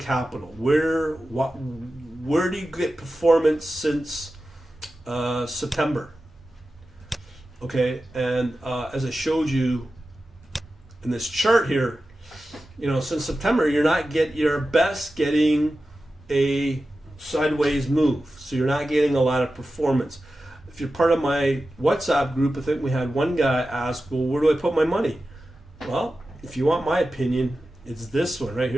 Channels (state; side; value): normal; both; correlation 0.93